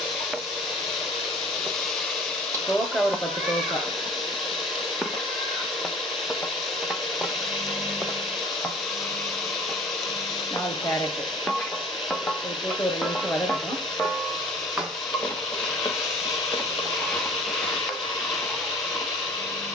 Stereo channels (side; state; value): both; normal; correlation 0.47